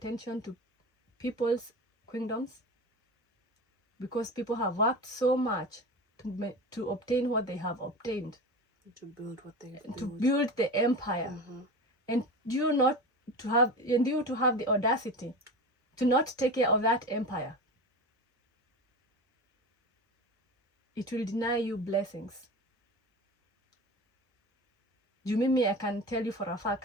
to people's kingdoms, because people have worked so much to obtain what they have obtained, to build what they have to build the empire. And you to have the audacity to not take care of that empire, it will deny you blessings. You mimi, I can tell you for a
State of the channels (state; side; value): normal; both; correlation 0.29